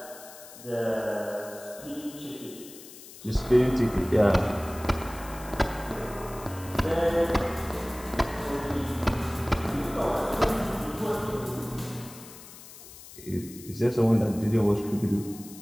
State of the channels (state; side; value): noise; left; hiss, 17 dB below the sound